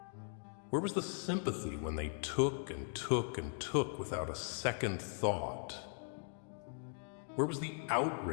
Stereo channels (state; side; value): silent; right; 52 dB below the other